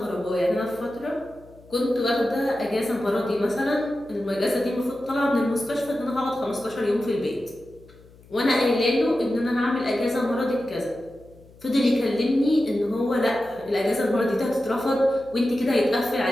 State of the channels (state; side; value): noise; left; hum, 25 dB below the sound